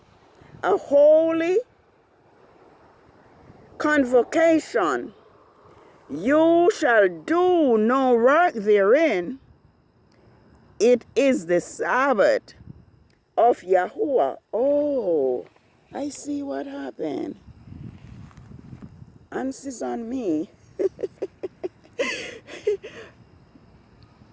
a holy convocation. You shall do no work therein. It is the Sabbath of Yahuwah. Oh, I see what happened. Answers on me.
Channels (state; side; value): identical; both; correlation 1.00